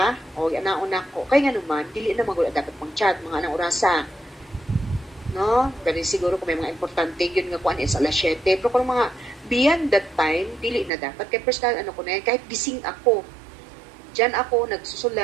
O, nauna ko. Kaya nga naman, dili na magula dapat mag-chat, mga anang orasa. No? Ganun siguro kung may mga importante, yun nga kuan is alas 7. Pero kung mga beyond that time, dili na dapat. Kaya personal, ko na yan, kahit gising ako. Diyan ako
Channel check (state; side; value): drops out; left; at 10.9 s